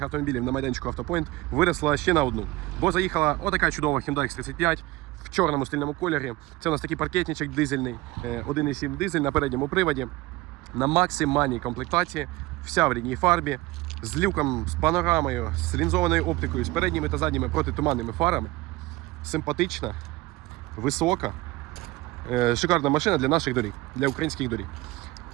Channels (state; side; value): quieter; left; 19.3 dB